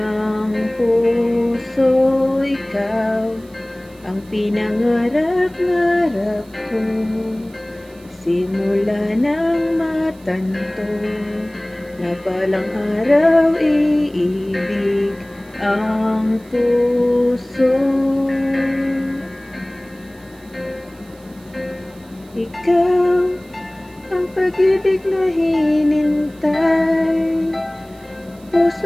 puso. Ikaw ang pinangarap-ngarap ko, simula ng matanto na balang araw iibig ang puso. Ikaw ang pag-ibig na hinintay,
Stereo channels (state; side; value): noise; right; hiss, 27 dB below the sound